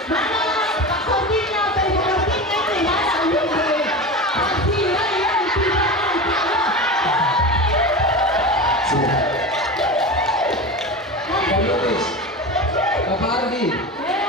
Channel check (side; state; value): both; normal; correlation 0.26